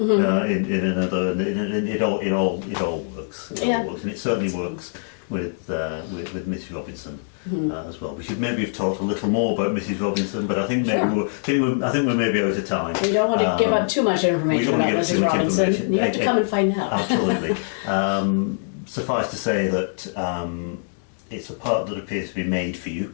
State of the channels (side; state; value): right; silent; digital silence